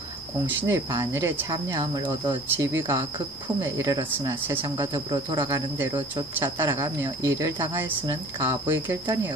공신의 반열에 참여함을 얻어 지위가 극품에 이르렀으나 세상과 더불어 돌아가는 대로 쫓아 따라가며 일을 당하였으는 가부의 결단이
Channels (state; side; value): normal; both; correlation 0.47